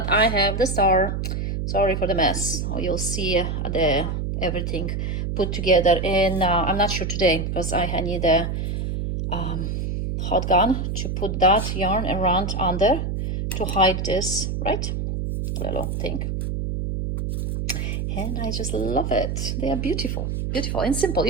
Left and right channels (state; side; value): noise; right; hum, 2 dB below the sound